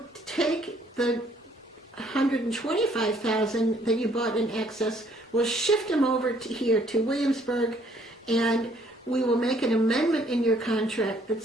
take the 125,000 that you bought in excess, we'll shift them over here to Williamsburg, and we will make an amendment in your contract that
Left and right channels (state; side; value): normal; both; correlation 0.64